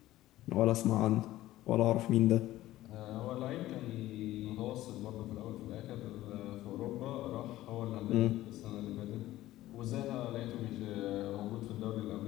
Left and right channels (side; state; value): right; quieter; 15.5 dB